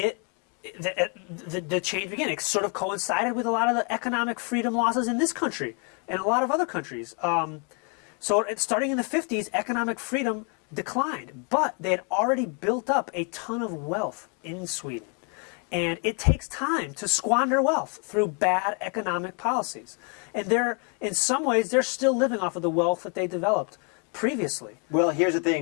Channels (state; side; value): quieter; right; 36.9 dB